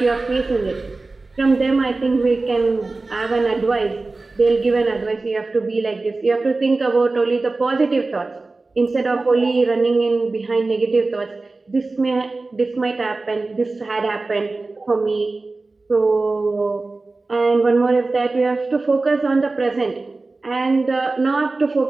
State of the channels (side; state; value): left; quieter; 3.5 dB